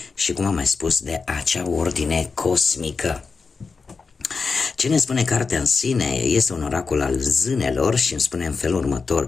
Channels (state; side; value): quieter; right; 4.7 dB